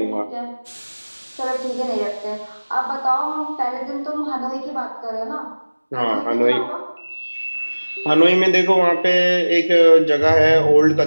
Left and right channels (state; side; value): inverted; both; correlation -1.00